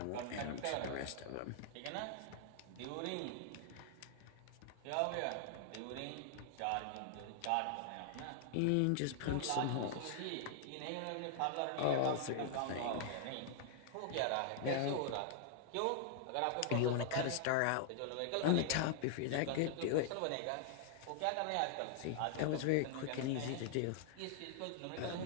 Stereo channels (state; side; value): different; both; correlation -0.01